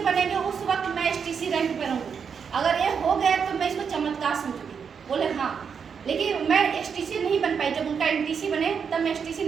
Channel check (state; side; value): quieter; left; 6.6 dB